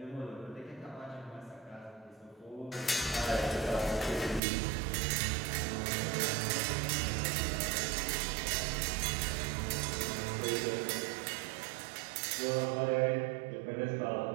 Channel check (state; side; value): drops out; left; at 4.4 s